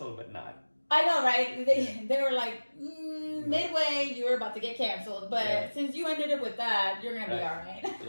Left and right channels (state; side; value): inverted; both; correlation -1.00